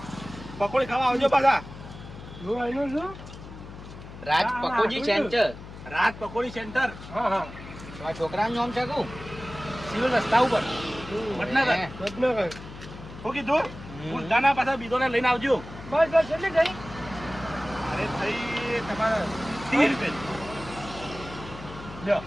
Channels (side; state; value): left; noise; hum, 14 dB below the sound